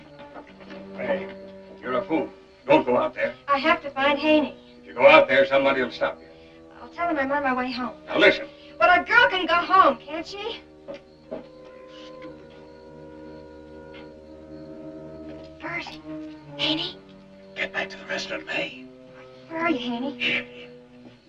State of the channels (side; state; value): both; identical; correlation 1.00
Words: Hey, you're a fool. Don't go out there. I have to find Haney. If you go out there, somebody will stop you. I'll tell him I'm on my way home. Now, listen. But a girl can go home, can't she? Bert, Haney? Get back to the restaurant, May. Where are you, Haney? Here.